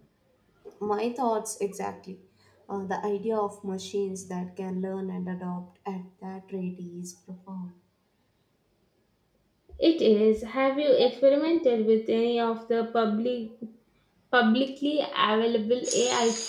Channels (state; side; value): identical; both; correlation 1.00